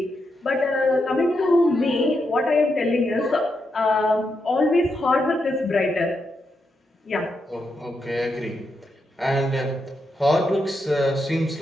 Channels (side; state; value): both; normal; correlation 0.83